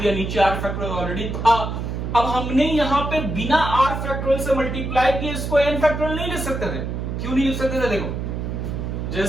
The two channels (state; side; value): noise; right; hum, 4 dB below the sound